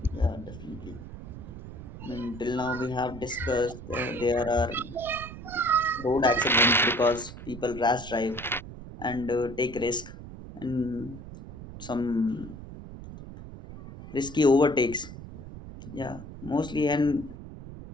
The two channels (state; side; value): noise; right; rumble, 13 dB below the sound